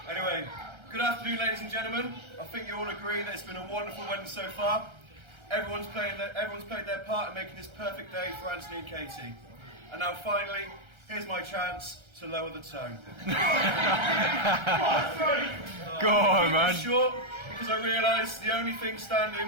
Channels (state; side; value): late; left; 1.3 ms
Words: Anyway, good afternoon, ladies and gentlemen. I think you all agree that it's been a wonderful wedding so far. Everyone's played their part in making this perfect day for Antony and Katie. And now finally, here's my chance to lower the tone. Go on, man. Short, because I realise the only thing